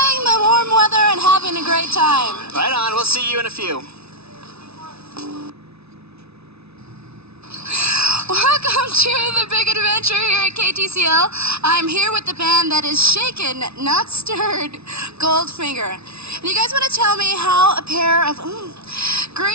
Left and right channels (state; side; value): late; left; 0.80 ms